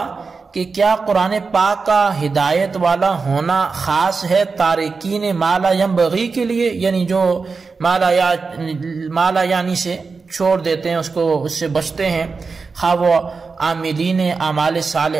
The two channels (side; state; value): left; quieter; 4.6 dB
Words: کہ کیا قرآن پاک کا ہدایت والا ہونا خاص ہے تارکین ما لا ينبغی کے لیے، یعنی جو ما لا یعنی سے چھوڑ دیتے ہیں، اس سے بچتے ہیں، خواہ وہ عاملین اعمال